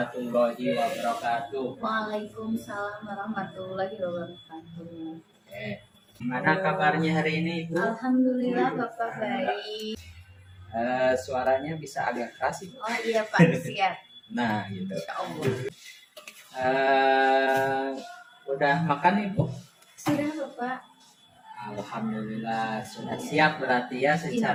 wabarakatuh. Waalaikumsalam warahmatullahi wabarakatuh. Oke. Gimana kabarnya hari ini Bu? Alhamdulillah Bapak baik. Suaranya bisa agak keras Ibu. Oh iya Pak, siap. Nah gitu. Insya Allah. Udah makan Ibu? Sudah Bapak. Alhamdulillah sudah siap berarti ya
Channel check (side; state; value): both; identical; correlation 1.00